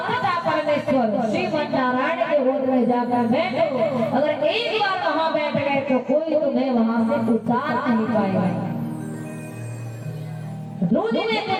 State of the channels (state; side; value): identical; both; correlation 1.00